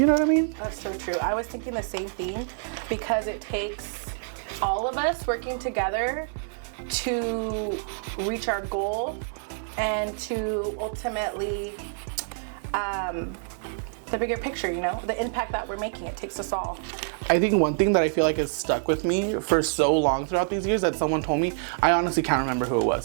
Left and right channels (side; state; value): left; silent; digital silence